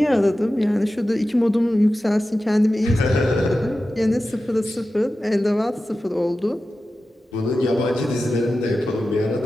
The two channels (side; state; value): both; normal; correlation 0.93